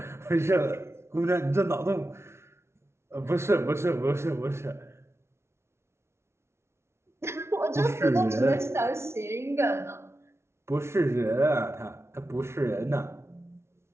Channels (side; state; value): left; late; 0.13 ms